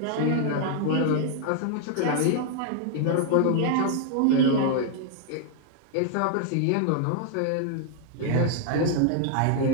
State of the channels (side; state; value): both; different; correlation 0.00